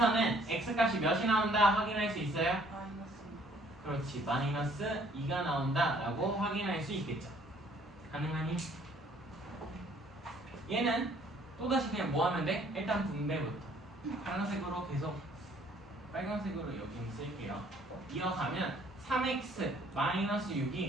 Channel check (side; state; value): both; normal; correlation 0.60